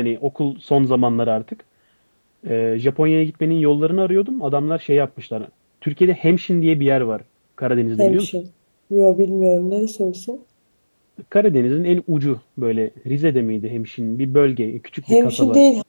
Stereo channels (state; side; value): inverted; both; correlation -1.00